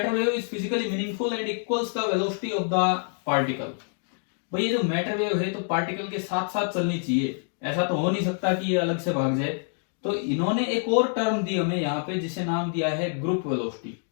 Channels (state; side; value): silent; right; 57 dB below the other